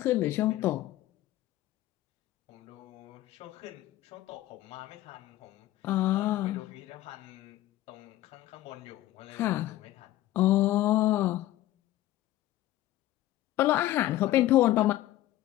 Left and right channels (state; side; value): quieter; right; 15.1 dB